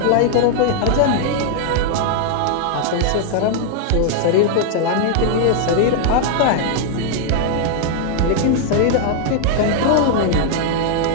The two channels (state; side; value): different; both; correlation 0.00